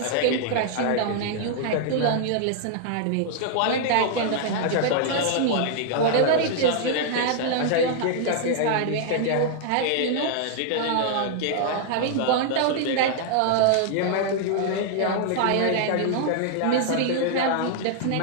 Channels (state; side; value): different; both; correlation -0.01